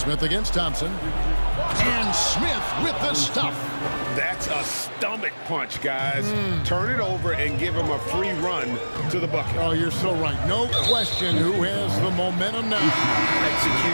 against Thompson. And Smith with the stuff. That's a stomach punch, guys. Turn it over and give him a free run to the bucket. Oh, you're so right. No question who has the momentum now.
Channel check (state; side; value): inverted; both; correlation -1.00